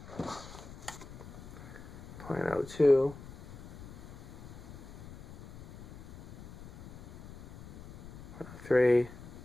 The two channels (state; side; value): noise; left; rumble, 15 dB below the sound